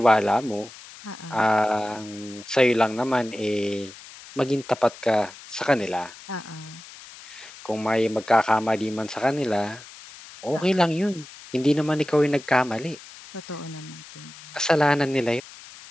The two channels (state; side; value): noise; left; hiss, 18 dB below the sound